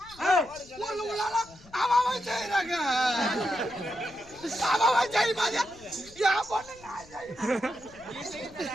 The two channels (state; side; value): noise; left; rumble, 23 dB below the sound